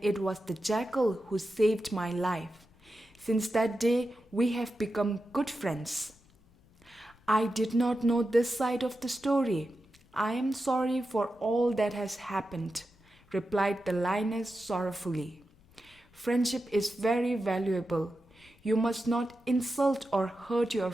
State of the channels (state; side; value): noise; left; rumble, 29 dB below the sound